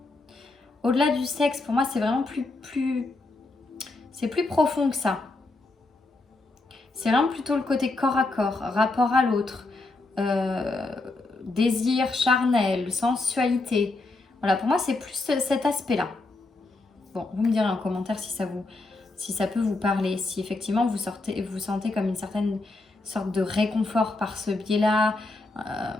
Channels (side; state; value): right; quieter; 3.2 dB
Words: au-delà du sexe, pour moi c'est vraiment c'est plus profond que ça. C'est vraiment plutôt le côté corps à corps, rapport à l'autre, désir charnel, sensualité. Voilà, pour moi, c'est plus cet aspect-là. Bon, vous me direz en commentaire si ça peut vous parler, si effectivement vous sentez comme une certaine sorte de réconfort par ce biais-là,